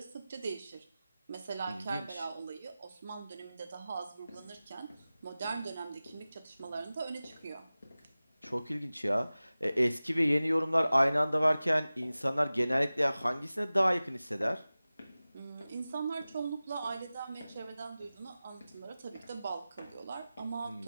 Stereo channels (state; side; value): inverted; both; correlation -0.97